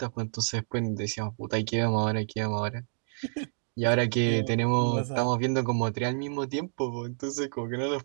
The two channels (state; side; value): silent; left; digital silence